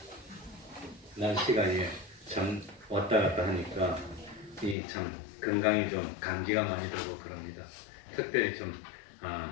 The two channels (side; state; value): right; drops out; at 4.8 s